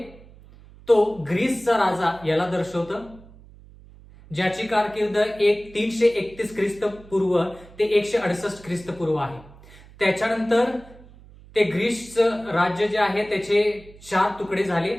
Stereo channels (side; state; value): right; noise; hum, 22 dB below the sound